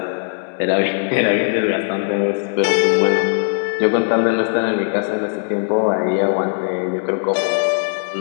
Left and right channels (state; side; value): silent; right; 67 dB below the other